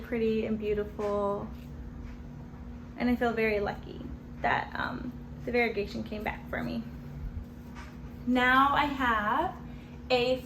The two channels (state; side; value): identical; both; correlation 1.00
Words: and beautiful. And I feel very lucky that the variegation came back for me. Now I have a